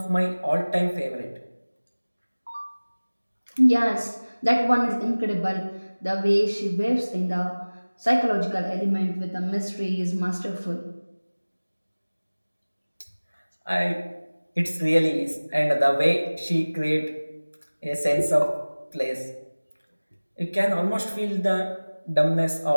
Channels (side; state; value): both; inverted; correlation -1.00